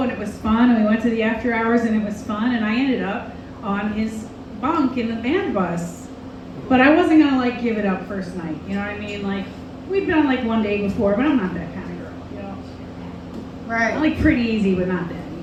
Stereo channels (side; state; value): both; identical; correlation 1.00